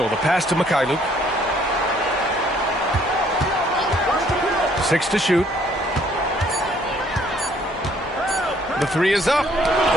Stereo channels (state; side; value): normal; both; correlation 0.63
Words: the pass to Mikhailuk. 6 to shoot. The three is up.